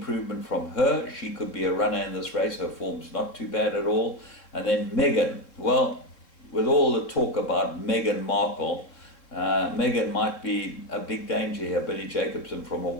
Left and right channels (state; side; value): late; right; 3.6 ms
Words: from her. She could be a runner in this race. Her form's not too bad at all. And then Megan. Well, with all the talk about Meghan Markle, Megan might be a big danger here. Billy Jacobson from a